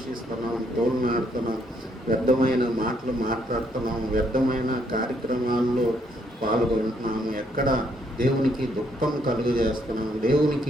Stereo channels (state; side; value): normal; both; correlation 0.71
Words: తోలునాడుతున్నాం, వ్యర్థమైన మాటలు మాట్లాడుతున్నాం, వ్యర్థమైన కార్యక్రమాల్లో పాల్గొంటున్నాము, ఎక్కడ దేవునికి దుఃఖం కలుగజేస్తున్నాం,